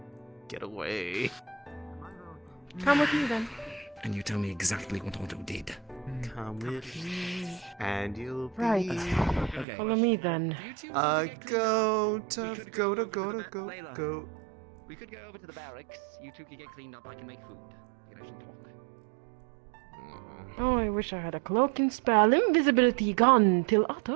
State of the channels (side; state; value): left; drops out; at 9.7 s